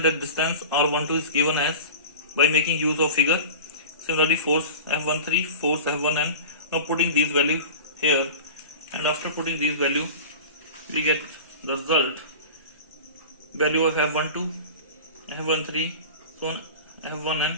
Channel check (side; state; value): both; inverted; correlation -0.34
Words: at distance r12 is given as by making use of figure. Similarly, force F13, force F1n. Now putting these value here, and after putting these value, we get the result value of F12, F13, so on F1n,